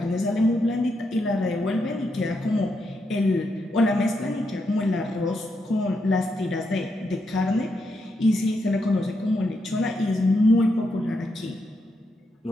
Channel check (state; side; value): normal; both; correlation 0.82